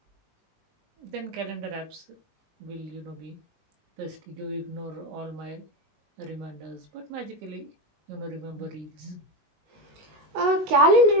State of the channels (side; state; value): left; late; 19 ms